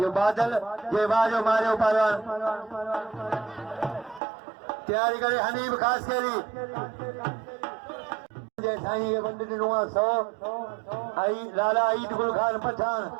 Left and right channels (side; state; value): left; drops out; at 4.2 s